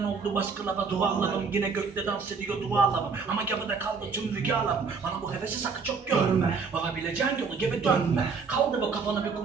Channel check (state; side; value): quieter; left; 5.2 dB